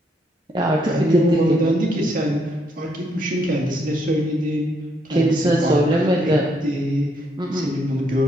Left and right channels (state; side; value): normal; both; correlation 0.73